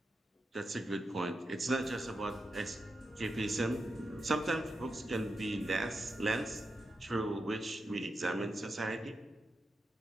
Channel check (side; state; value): both; normal; correlation 0.87